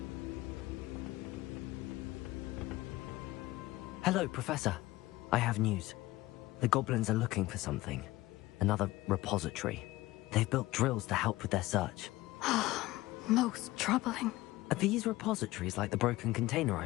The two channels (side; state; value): right; quieter; 18.3 dB